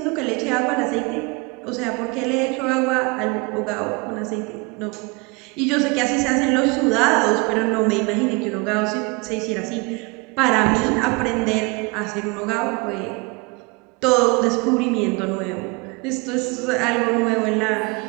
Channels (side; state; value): left; quieter; 28.5 dB